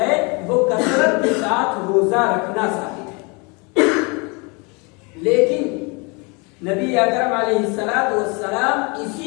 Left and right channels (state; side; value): quieter; right; 30.5 dB